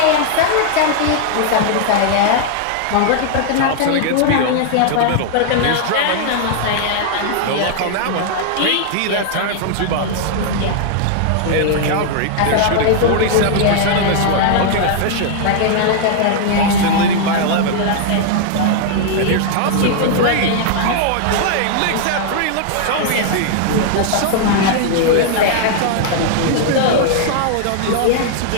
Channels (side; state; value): both; different; correlation -0.01